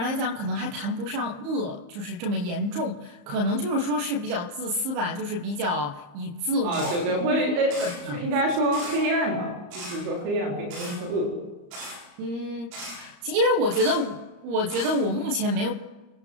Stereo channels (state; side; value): late; left; 34 ms